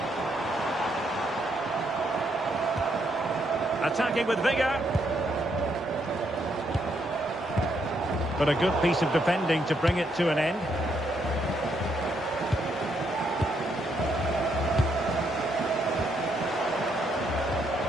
Attacking with vigour. But a good piece of defending to bring it to an end.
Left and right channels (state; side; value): normal; both; correlation 0.75